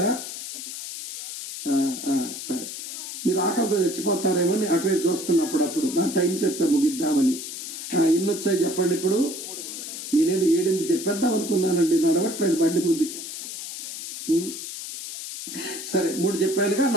సరే, మీరు ఆకలితో చచ్చిపోతారేమో అటువైపు చూస్తున్నప్పుడు అప్పుడు నా టైం చెప్తే ముగిద్దామని. ఎన్ని వచ్చాయి చెప్పండి ఇప్పుడు? నేనేదో 7 చెప్పేద్దాం అనుకున్నానండి, నడవట్లేదు బండి ముందుకి. సరే, 3 చెప్పానుగా,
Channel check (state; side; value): noise; left; hiss, 8 dB below the sound